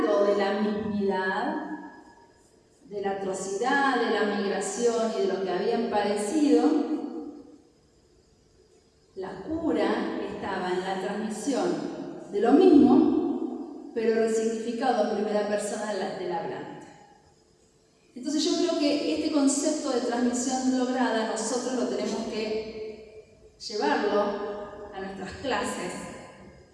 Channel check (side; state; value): both; identical; correlation 1.00